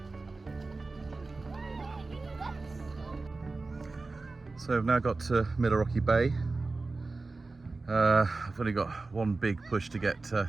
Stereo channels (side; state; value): left; quieter; 3.6 dB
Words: So I've now got to Rocky Bay. I've only got one big push to get